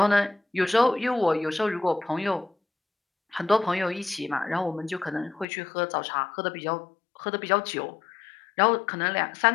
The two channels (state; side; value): drops out; right; at 5.5 s